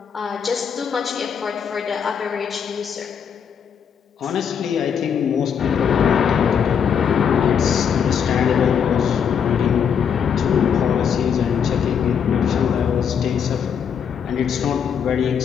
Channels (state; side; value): quieter; right; 7.5 dB